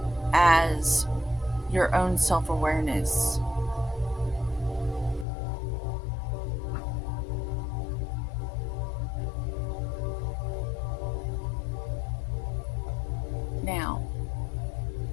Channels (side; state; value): right; drops out; at 5.2 s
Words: as your own self-awareness. Now,